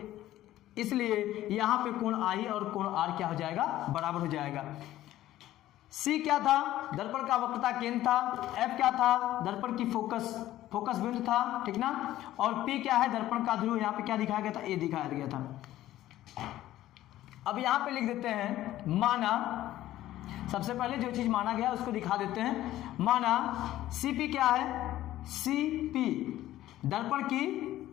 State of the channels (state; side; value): quieter; right; 14.3 dB